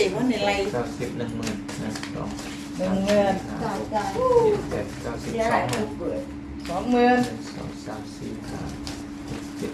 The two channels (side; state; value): both; identical; correlation 1.00